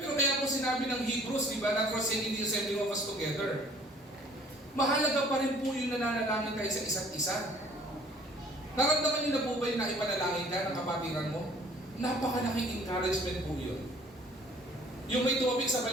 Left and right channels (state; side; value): normal; both; correlation 0.55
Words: kaya po sinabi ng Hebrews, di ba, not forsaking the assembling of us together. Mahalaga pa rin po yung nananalangin tayo sa isa't isa. Naramdaman niyo na po ba yung naipanalangin ka ng kapatiran mo? Napakalaking encouragement po yun. Yung may tumabik sa